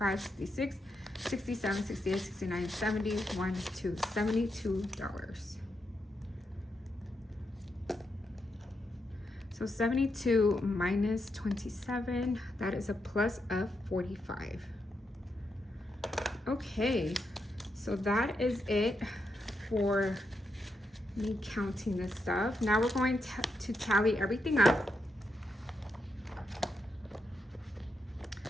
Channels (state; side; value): normal; both; correlation 0.83